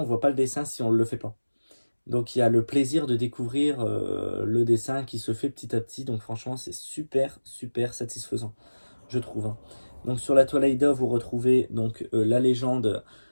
voit pas le dessin si on le fait pas. Donc il y a le plaisir de découvrir le dessin qui se fait petit à petit, donc franchement c'est super super satisfaisant, je trouve. Hein. Donc sur la toile Aïda, vous retrouvez donc la légende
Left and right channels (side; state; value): both; inverted; correlation -1.00